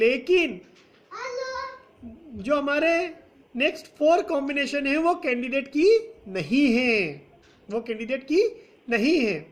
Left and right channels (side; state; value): both; identical; correlation 1.00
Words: जो हमारे नेक्स्ट 4 कॉम्बिनेशन है वो कैंडिडेट की नहीं है. वो कैंडिडेट की नहीं है.